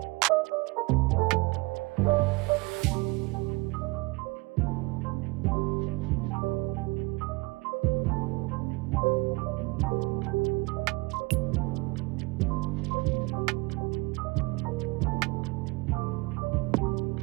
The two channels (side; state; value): left; quieter; 25.1 dB